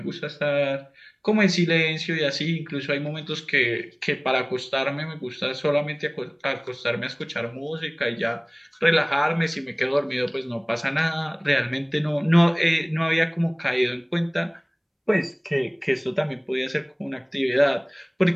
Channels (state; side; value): identical; both; correlation 1.00